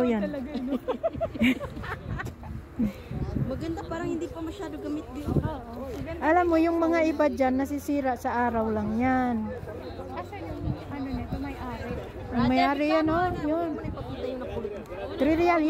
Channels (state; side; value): identical; both; correlation 1.00